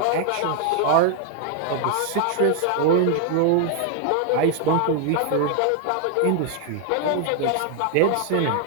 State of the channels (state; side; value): different; both; correlation 0.00